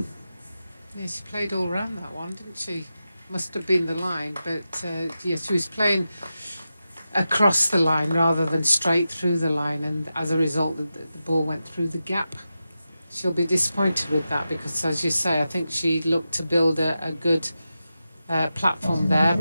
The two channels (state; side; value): inverted; both; correlation -0.91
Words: Yeah, she played all round that one, didn't she? Must have been the line, but yeah, she was playing across the line rather than straight through the line, and as a result the ball went through the gap. She'll be disappointed with that, because as you say, I think she looked to build a good platform there,